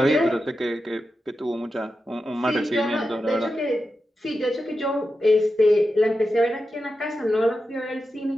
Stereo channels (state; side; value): normal; both; correlation 0.90